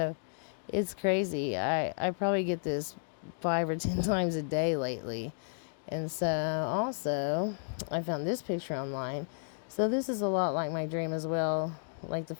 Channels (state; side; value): silent; right; digital silence